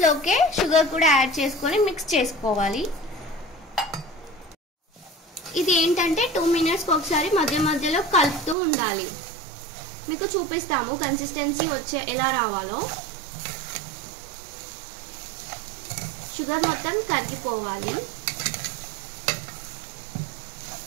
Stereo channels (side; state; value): left; drops out; at 8.6 s